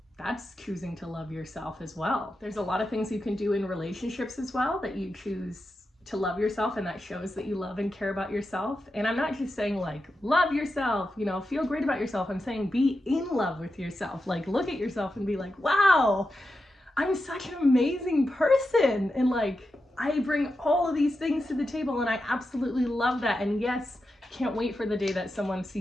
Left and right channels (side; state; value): both; normal; correlation 0.89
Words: That's choosing to love yourself as well. There's a lot of things you can do in relationships as well that you choose to love yourself, and that shows that you love and care about yourself. And I'm not just saying like love yourself, you know, feel great about yourself. I'm saying be in love with yourself. Like look at yourself and be like, wow, I'm such an amazing person, and like I bring all of these things to the table, and I absolutely love that. And yes, can't wait for the day that someone